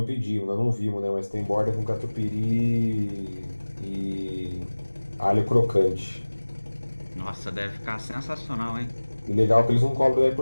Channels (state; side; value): inverted; both; correlation -1.00